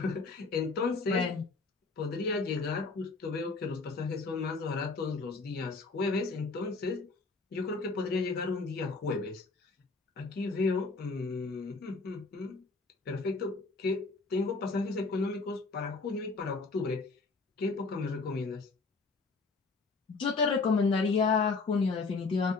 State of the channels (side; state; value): right; quieter; 4.0 dB